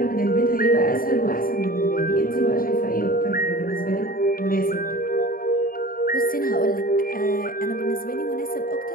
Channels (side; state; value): right; late; 0.41 ms